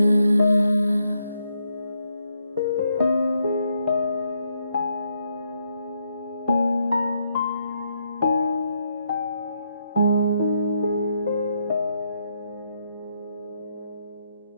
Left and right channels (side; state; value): both; inverted; correlation -0.78